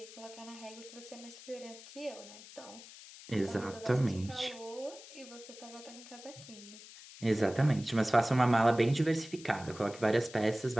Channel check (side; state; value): left; noise; hiss, 17 dB below the sound